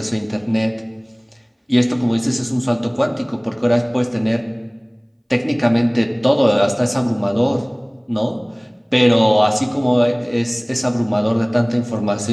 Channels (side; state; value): both; identical; correlation 1.00